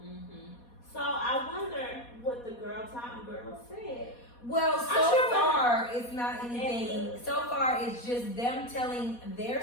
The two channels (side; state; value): right; late; 4.2 ms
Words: Mm-hmm. So I wonder what the Girl Time girl said. Well, so far it's not anything. So far it's just them telling their